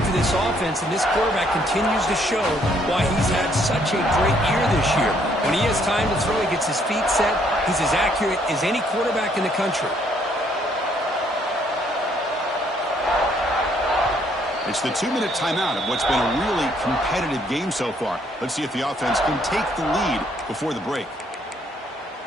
for this offense, and this quarterback continues to show why he's had such a great year this year. When he has time to throw, he gets his feet set. He's as accurate as any quarterback in the country. It's the 2-minute timeout of what's been a really competitive game so far. Let's see if the offense can take the lead before the break.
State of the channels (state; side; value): normal; both; correlation 0.67